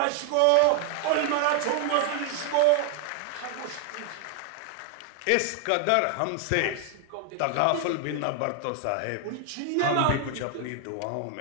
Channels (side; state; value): both; different; correlation 0.00